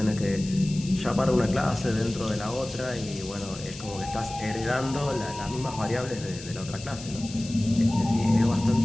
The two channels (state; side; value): noise; left; hiss, 14 dB below the sound